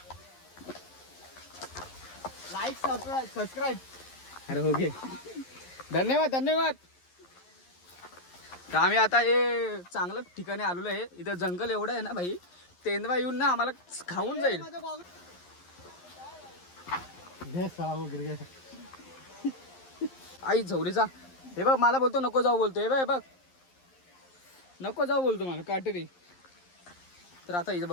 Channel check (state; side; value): late; right; 11 ms